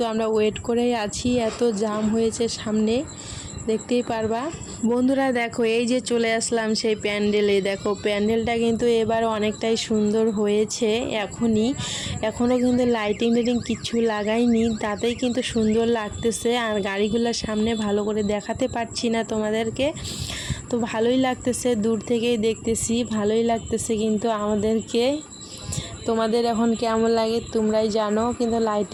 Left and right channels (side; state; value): both; identical; correlation 1.00